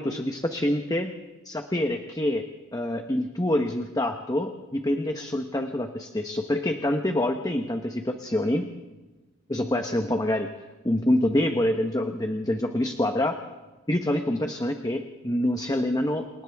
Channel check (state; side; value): normal; both; correlation 0.80